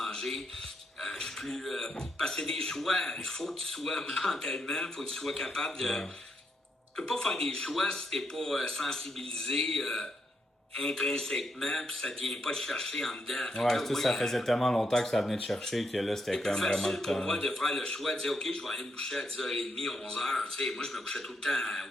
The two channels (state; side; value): normal; both; correlation 0.79